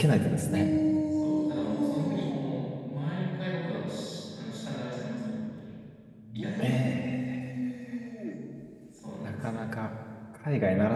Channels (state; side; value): identical; both; correlation 1.00